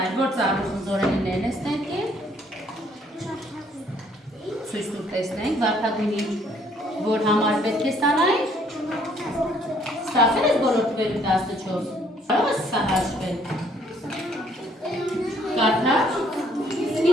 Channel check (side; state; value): both; normal; correlation 0.64